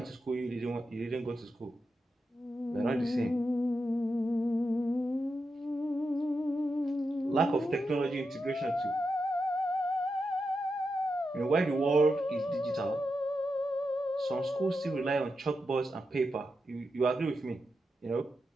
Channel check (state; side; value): normal; both; correlation 0.88